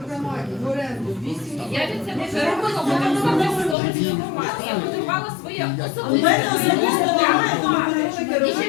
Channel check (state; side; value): drops out; right; at 3.8 s